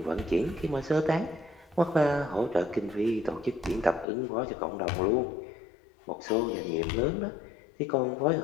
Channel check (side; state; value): right; drops out; at 4.0 s